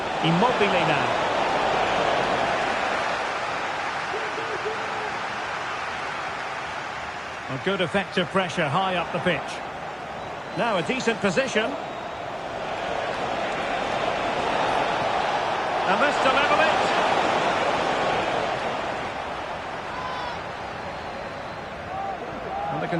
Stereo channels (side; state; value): both; identical; correlation 1.00